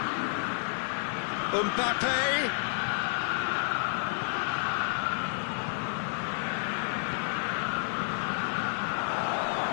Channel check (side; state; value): right; silent; digital silence